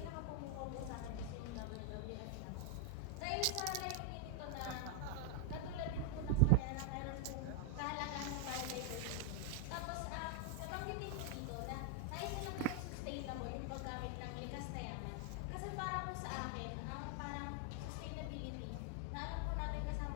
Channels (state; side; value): different; both; correlation 0.00